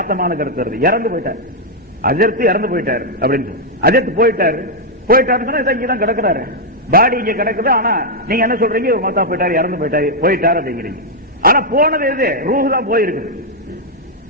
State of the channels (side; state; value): both; normal; correlation -0.03